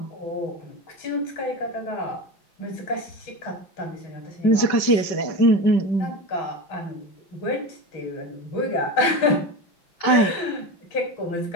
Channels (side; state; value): right; late; 5.2 ms